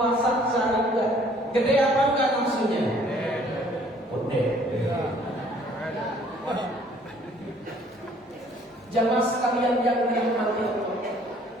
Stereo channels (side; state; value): both; normal; correlation 0.58